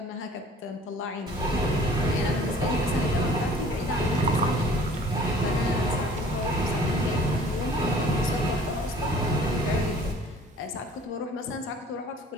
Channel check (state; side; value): normal; both; correlation 0.50